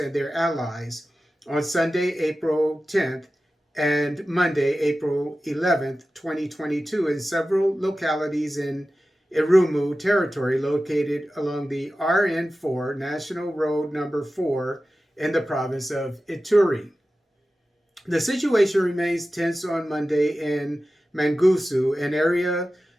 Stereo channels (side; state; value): both; normal; correlation 0.94